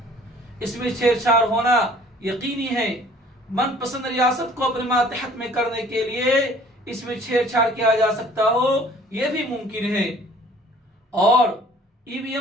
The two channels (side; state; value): both; normal; correlation 0.53